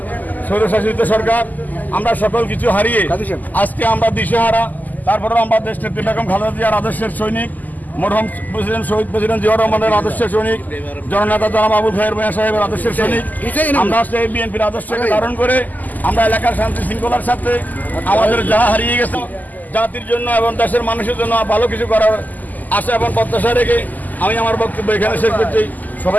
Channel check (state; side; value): late; right; 0.082 ms